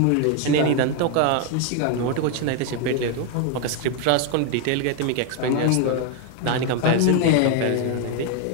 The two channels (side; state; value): both; different; correlation 0.01